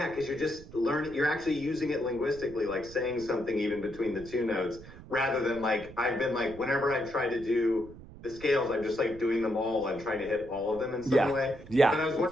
you're just learning, you're actually using it linguistically, like saying something even between the 2 notes, rather than like, I've been like, whenever I try to do the scales, I'm just like doing them all and trying to hit all of them in some way. Yeah. But I was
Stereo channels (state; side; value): noise; right; rumble, 17 dB below the sound